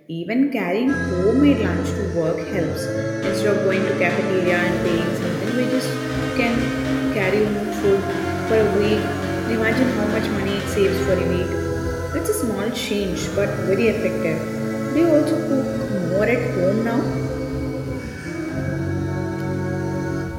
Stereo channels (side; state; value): both; identical; correlation 1.00